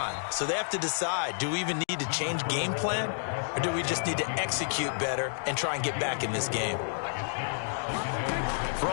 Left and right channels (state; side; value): silent; right; digital silence